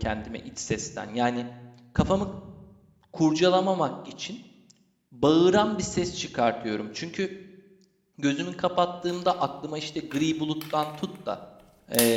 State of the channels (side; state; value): both; identical; correlation 1.00